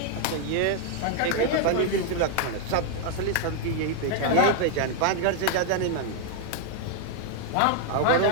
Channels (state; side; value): different; both; correlation 0.00